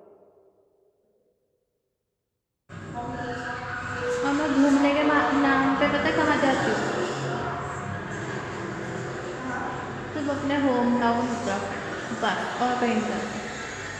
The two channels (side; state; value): both; identical; correlation 1.00